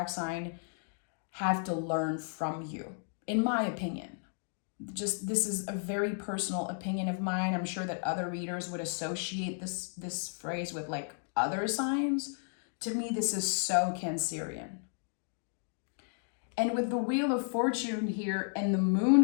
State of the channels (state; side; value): silent; right; 56 dB below the other